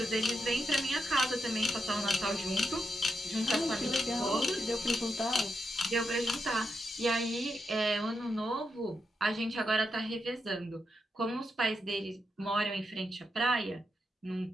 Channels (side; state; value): both; normal; correlation 0.84